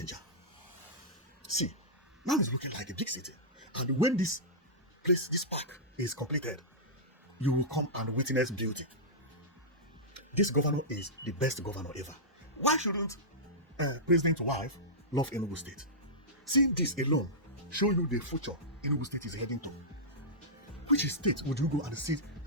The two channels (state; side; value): normal; both; correlation -0.14